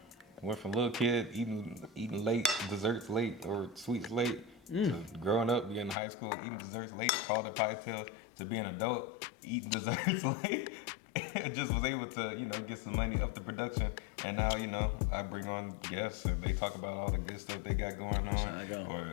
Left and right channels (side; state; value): right; drops out; at 6.0 s